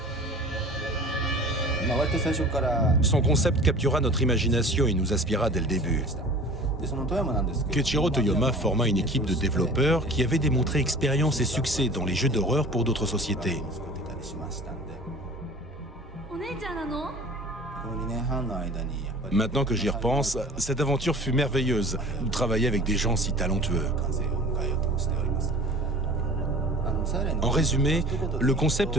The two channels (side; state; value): both; normal; correlation 0.42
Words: Son concept captura notre imagination et nous inspira dès le début. Keiichiro Toyoma forma une équipe de développeurs qui avait démontré expérience et succès dans les jeux d'horreur pour d'autres sociétés. Maintenant que j'y repense, cette aventure fut merveilleuse de travailler avec des gens si talentueux. En résumé, le